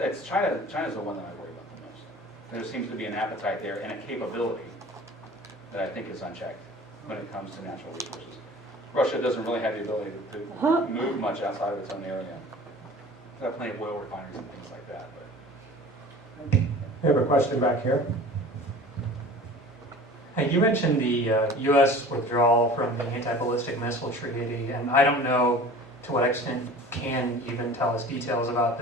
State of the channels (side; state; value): both; normal; correlation 0.42